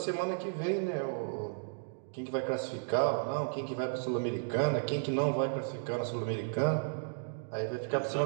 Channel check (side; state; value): left; silent; digital silence